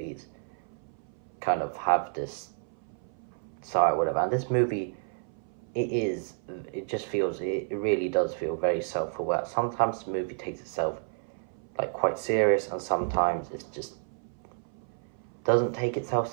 kind of have this side, whatever. And this movie, it just feels, it really does feel very self-aware. Sometimes the movie takes itself like quite serious, and sometimes it just doesn't take itself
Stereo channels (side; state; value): left; silent; 58 dB below the other